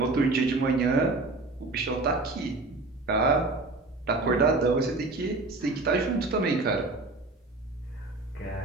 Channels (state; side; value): quieter; left; 3.2 dB